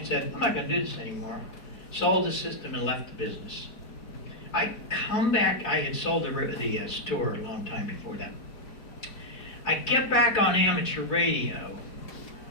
said, I'm not gonna do this anymore. Sold the system and left the business. I come back, I had sold the store a long time before that. I get back on amateur radio,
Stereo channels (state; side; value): late; right; 4.6 ms